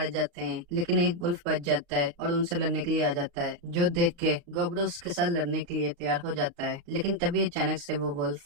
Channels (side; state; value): left; late; 34 ms